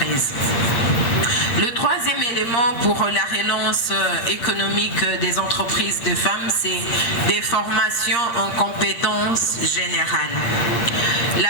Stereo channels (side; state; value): right; late; 8.7 ms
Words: Le troisième élément pour la relance économique des entreprises de femmes, c'est des formations en compétences générales.